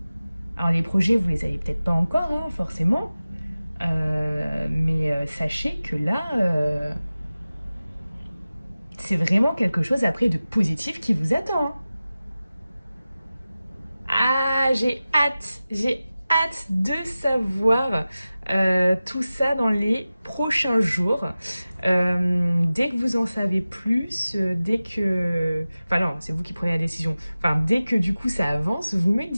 Alors les projets, vous les avez peut-être pas encore, hein, forcément, mais sachez que là, c'est vraiment quelque chose après de positif qui vous attend, hein. Ah, j'ai hâte de savoir tout ça dans les prochains jours. Dès que vous en savez plus, dès que... Enfin non, c'est vous qui prenez la décision. Enfin, dès que du coup ça avance, vous me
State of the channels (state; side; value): inverted; both; correlation -0.96